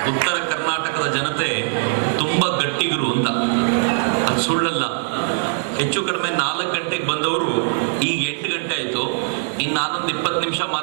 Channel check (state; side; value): silent; left; digital silence